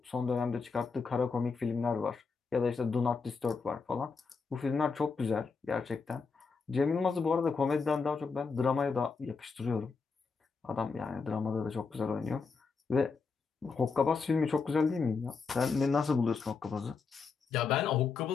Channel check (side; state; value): right; quieter; 4.8 dB